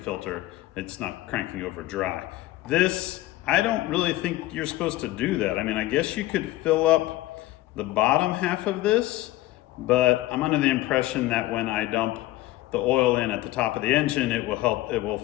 It's not cranking over dry. This, I don't really think you're supposed to do that. I mean, I guess you could fill up the bottom half of this, but I'm under the impression that when I dump the oil in at the top of the engine, it will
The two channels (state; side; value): quieter; right; 16.7 dB